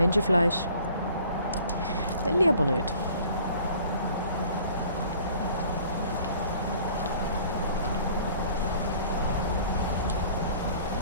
Will ich aber nicht.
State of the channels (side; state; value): both; inverted; correlation -0.52